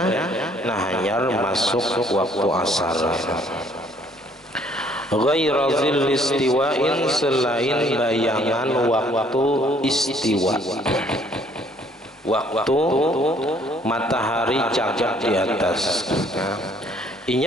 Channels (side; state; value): both; normal; correlation 0.61